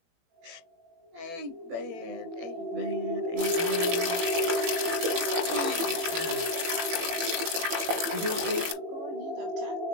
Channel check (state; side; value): late; left; 18 ms